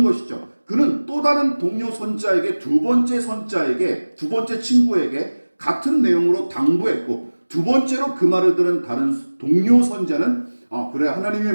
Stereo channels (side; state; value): both; inverted; correlation -1.00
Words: 것이죠. 그는 또 다른 동료 선지자에게 두 번째 친구에게 같은 내용으로 당부했고 두 번째로 그 말을 들은 다른 동료 선지자는 그래 하나님의